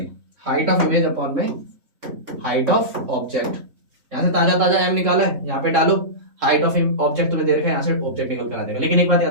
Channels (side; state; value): left; late; 3.6 ms